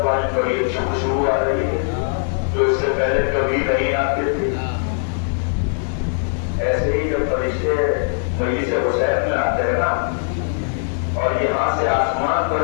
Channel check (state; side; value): silent; right; 66 dB below the other